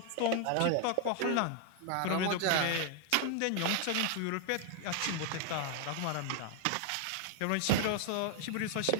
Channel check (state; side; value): different; both; correlation 0.00